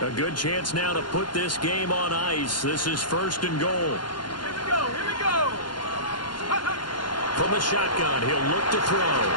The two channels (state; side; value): late; right; 0.71 ms